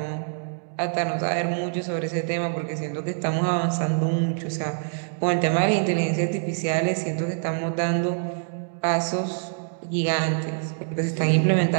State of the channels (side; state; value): left; silent; digital silence